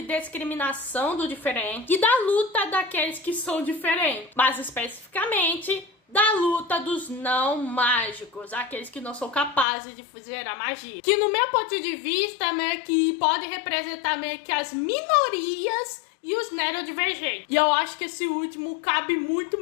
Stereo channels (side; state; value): right; drops out; at 9.7 s